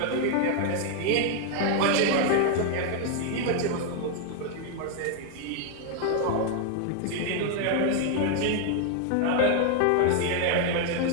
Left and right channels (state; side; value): different; both; correlation 0.00